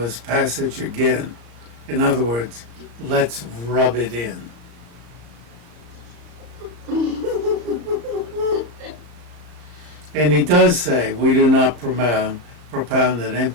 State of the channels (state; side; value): late; left; 34 ms